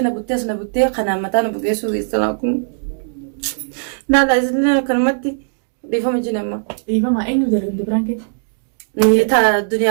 بتيس نبتة خنا متان بقيسو يسلاكم لا لا إذن كلمتي بيفهم جنما إيه فما إني بدر برانك نيتا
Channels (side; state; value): left; silent; digital silence